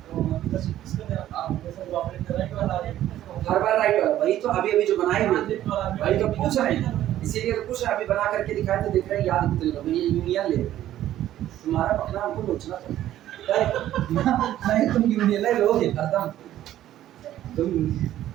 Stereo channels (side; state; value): left; quieter; 12.8 dB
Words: किसका देना आप जैसे ऑपरेट राइट वाला आ जाए, हर बार राइट वाला, वही तो अभी जो बनाए हुए, वही तो पूछ रहे हैं, इसीलिए तो पूछ रहे हैं। अभी बना करके दिखाए तो दिख रहे हैं, याद कितने लोग ये यूनियन ले, तुम्हारा पकड़ा हमको सोचना था नहीं, तुम यूनियन ले लोगे एकदम, तुम